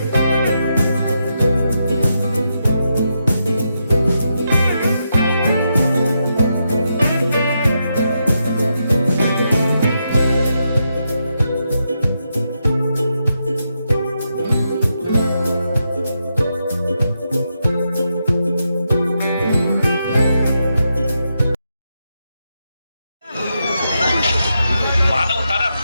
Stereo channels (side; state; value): both; inverted; correlation -0.84